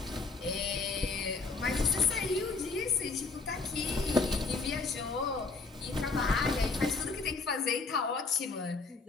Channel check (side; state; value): right; quieter; 4.2 dB